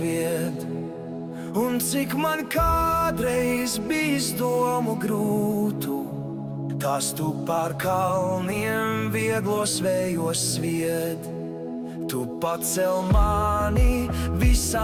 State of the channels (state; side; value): identical; both; correlation 1.00